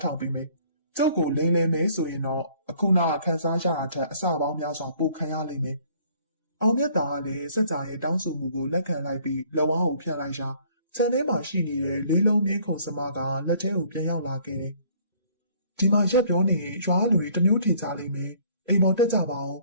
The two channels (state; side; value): inverted; both; correlation -0.58